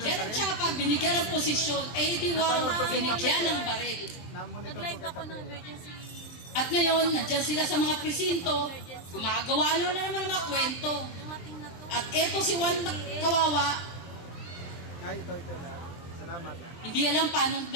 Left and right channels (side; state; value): right; late; 23 ms